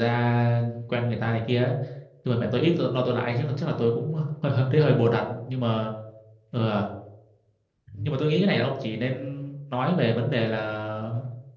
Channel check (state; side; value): identical; both; correlation 1.00